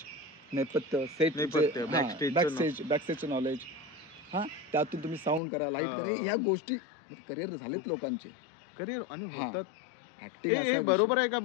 नेपथ्य सेट बॅकस्टेजचं नॉलेज, हां त्यातून तुम्ही साऊंड करा, लाईट करा, ह्या गोष्टी करिअर झालेत लोकांचे करिअर आणि हा. होतात. ऍक्टिंग असा बरोबर आहे का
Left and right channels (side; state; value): right; drops out; at 5.4 s